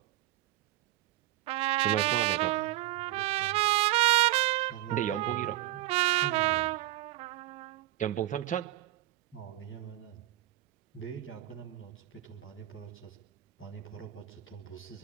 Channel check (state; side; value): quieter; left; 16.0 dB